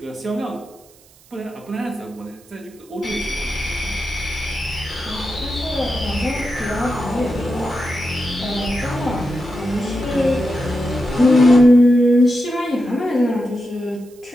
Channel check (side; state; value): right; noise; hiss, 28 dB below the sound